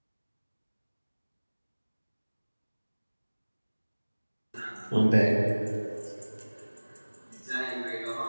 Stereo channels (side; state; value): both; inverted; correlation -1.00